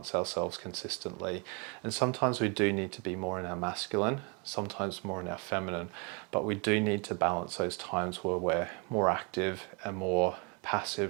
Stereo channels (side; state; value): left; quieter; 32.6 dB